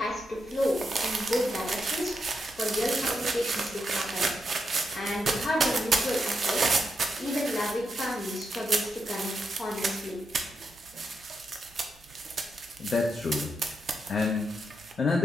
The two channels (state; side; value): noise; right; hum, 27 dB below the sound